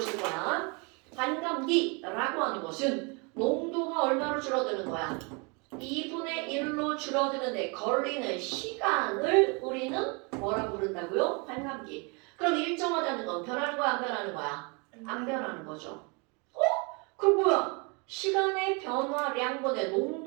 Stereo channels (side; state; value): left; quieter; 31.9 dB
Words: 쓸 거야. 반감기라고 하는 것은 농도가 얼마로 줄어드는 거야? 2분의 1로 줄어드는데 걸리는 시간을 우리는 뭐라고 부른다고요? 반감기. 그럼 일정하다는 건 변하는 거야, 안 변하는 거야? 안 변하는 거죠. 그럼 뭐야? 시간의 변화량분의